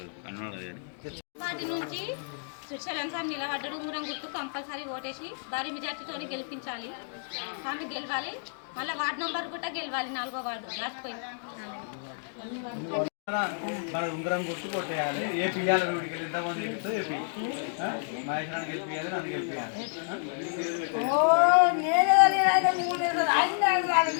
కన్నడ వాటి నుంచి శ్రీశైలం స్వామి నిలబడ్డాడు. ఉంగరం గుర్తు కంపల్సరీ ఓటేసి భారీ మెజార్టీతో గెలిపించాలి. స్వామి గెలవాలి. మళ్ళీ వార్డు నంబర్ కూడా గెలవాలి. 4వ వార్డు రాసిపోయింది. మన ఉంగరం గుర్తు కొట్టేయాలి. ఏపీ ఇవ్వాలి. వీడికి వెళ్ళి ఎంతమంది గెలుస్తో ఏపీ మహేశ్వరాన్ని గెలిపియాలి. నన్ను గెలిపియాలి.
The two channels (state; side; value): silent; right; digital silence